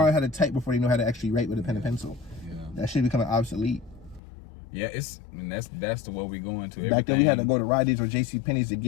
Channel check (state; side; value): drops out; right; at 4.2 s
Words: how to type before they know how to actually write with a pen and pencil. Yeah. That shit becoming obsolete. Yeah, that's the way we going to. Back then we had to go to Rite Aid or JCPenney's to